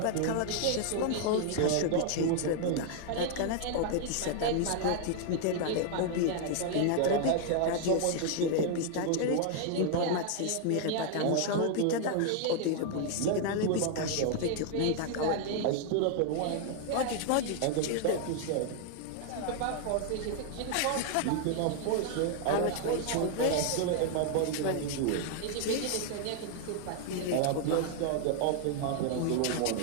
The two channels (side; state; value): both; different; correlation 0.00